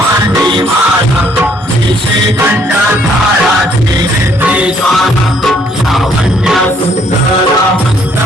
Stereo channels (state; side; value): normal; both; correlation 0.65